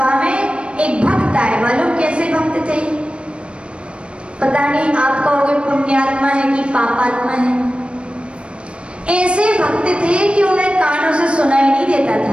में एक भक्त आए। मालूम कैसे भक्त थे? पता नहीं आप कहोगे पुण्यात्मा है कि पापात्मा है। ऐसे भक्त थे कि उन्हें कानों से सुनाई नहीं देता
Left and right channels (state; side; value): late; left; 0.058 ms